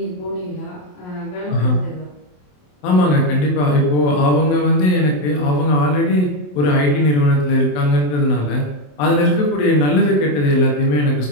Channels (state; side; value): late; right; 27 ms